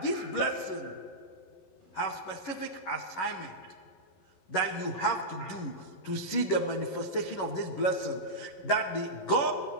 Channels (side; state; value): right; late; 11 ms